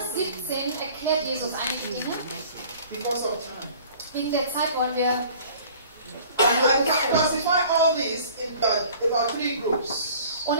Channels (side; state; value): both; inverted; correlation -0.49